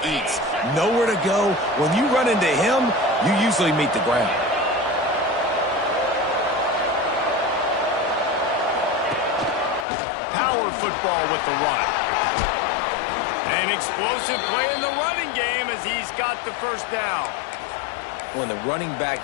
eats. Nowhere to go. When you run into him, you usually meet the ground. Power football with the run. An explosive play in the running game as he's got the first down. When the running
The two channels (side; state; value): right; drops out; at 9.9 s